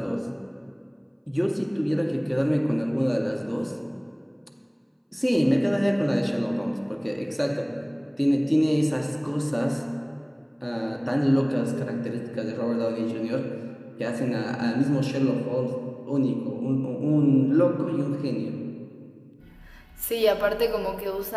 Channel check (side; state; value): both; identical; correlation 1.00